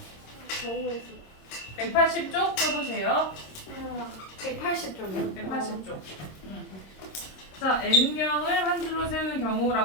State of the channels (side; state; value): right; late; 26 ms